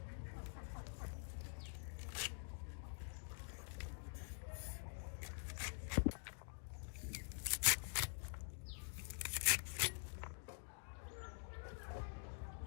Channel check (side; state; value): right; silent; digital silence